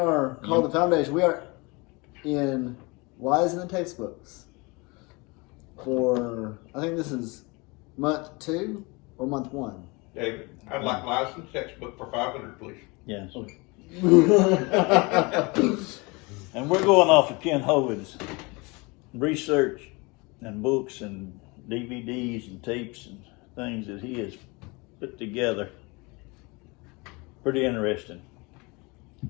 called the Foundation. We are in Lies in the Textbooks for, I think this is month 2 or month 1. David, I'd like Lies in the Textbook for 500, please. Yes. Okay. And we're going off of Ken Hovind's research and books and DVDs and tapes and things that he has put together. Pretty interesting.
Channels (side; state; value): right; quieter; 26.8 dB